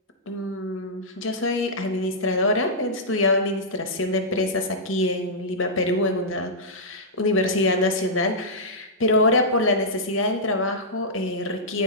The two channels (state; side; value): normal; both; correlation -0.12